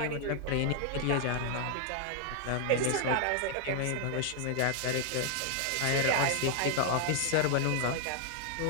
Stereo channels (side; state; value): both; different; correlation 0.00